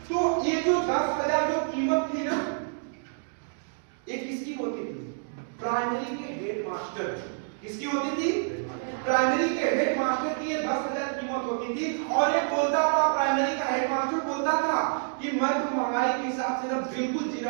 तो ये जो 10,000 जो कीमत थी ना, ये किसकी होती थी? प्राइमरी के हेड मास्टर। किसकी होती थी? प्राइमरी के हेड मास्टर की ये 10,000 कीमत होती थी। और ये बोलता था, प्राइमरी का हेड मास्टर बोलता था कि मैं तो महंगाई के हिसाब से ना बिल्कुल जी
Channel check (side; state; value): left; silent; digital silence